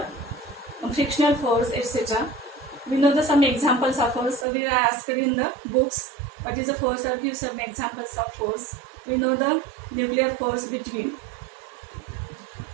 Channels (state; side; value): drops out; left; at 4.5 s